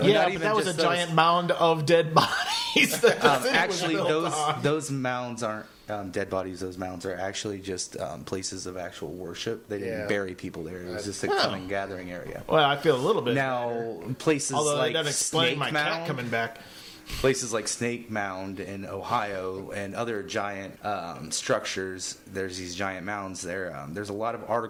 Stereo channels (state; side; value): identical; both; correlation 1.00